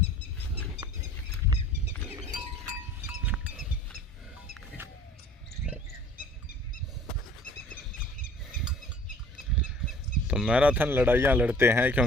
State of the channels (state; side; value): normal; both; correlation 0.51